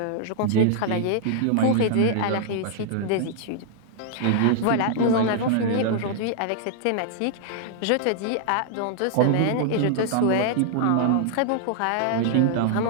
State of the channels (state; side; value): different; both; correlation -0.01